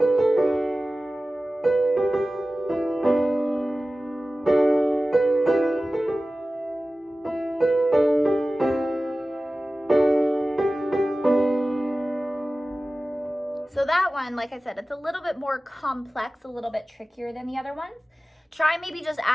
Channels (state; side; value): normal; both; correlation 0.96